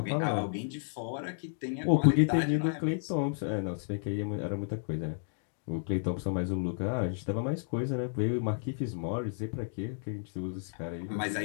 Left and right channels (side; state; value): right; silent; digital silence